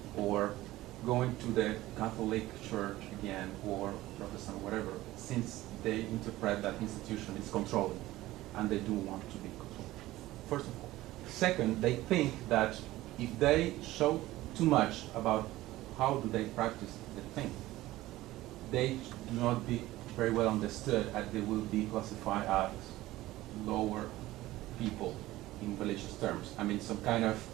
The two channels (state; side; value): quieter; left; 16.8 dB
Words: or going to the Catholic Church again or Protestant, whatever, since they interpret that institution is controlling and they do want to be controlled. First of all. Second, they think that if they show too much about how do they practice the thing, they do not be very well understood, and they will be classified as lower people in religious terms. I mean, some kind of